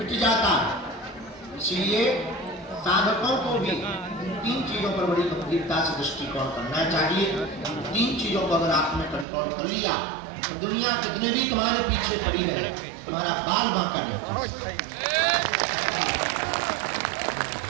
जाता। इसलिए साधकों को भी 3 चीजों पर बड़ी गंभीरता से दृष्टिकोण करना चाहिए। 3 चीजों को अगर आपने कंट्रोल कर लिया तो दुनिया कितने भी तुम्हारे पीछे पड़ी रहे, तुम्हारा बाल बांका नहीं।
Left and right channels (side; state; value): left; drops out; at 9.2 s